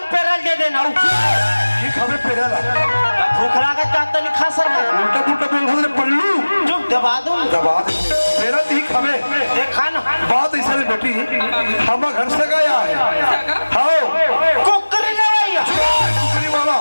पेरल दे देना ये खबे पेरेला भूख लागत का तो नहीं खा सकता। उल्टा पुल्टा बोल रहे पल्लू चुप दबा दूं दबा दे मेरा दी खबे देखा ना बात ऐसा नहीं बेटी हम घर से गया है हाँ कुकरी ले भैया कुकरी वाला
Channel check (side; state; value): both; inverted; correlation -1.00